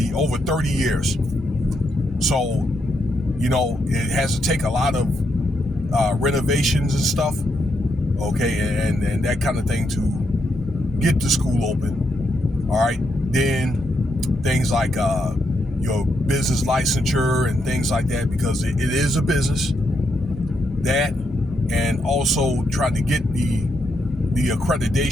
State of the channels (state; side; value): normal; both; correlation 0.80